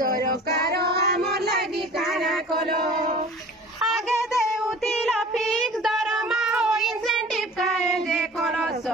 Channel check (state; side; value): normal; both; correlation 0.44